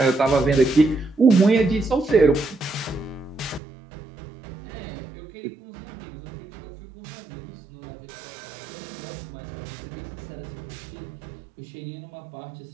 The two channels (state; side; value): drops out; left; at 3.6 s